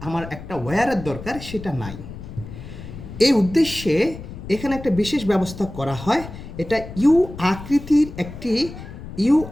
আমার একটা ওয়্যারের দরকার, সেটা নাই। এই উদ্দেশ্যে এখানে একটা বিশেষ ব্যবস্থা করা হয়। এটা ইউ আকৃতির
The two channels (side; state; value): left; noise; rumble, 12 dB below the sound